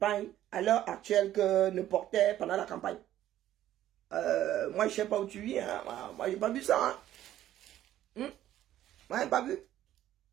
à l'heure actuelle que ne portaient pendant la campagne. Moi, je ne sais pas où tu vis. Hein. Moi, je n'ai pas vu ça. Hein. Moi, je n'ai pas vu.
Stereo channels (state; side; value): quieter; left; 12.7 dB